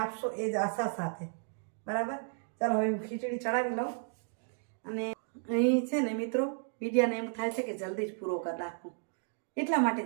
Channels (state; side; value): silent; left; 56 dB below the other